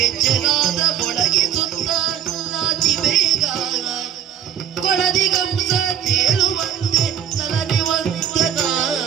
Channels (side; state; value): left; quieter; 9.5 dB